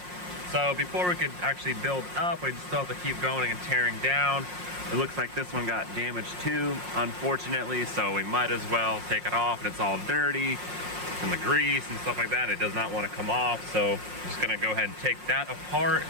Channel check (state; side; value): late; left; 5.6 ms